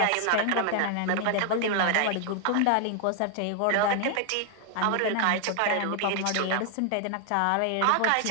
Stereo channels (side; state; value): both; different; correlation 0.00